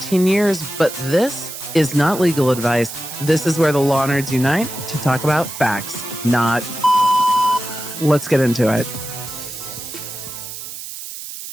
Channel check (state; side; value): noise; right; hiss, 10 dB below the sound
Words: years, but this is not legal advice. This is where the law nerds unite to talk about facts, not... Let's get into it.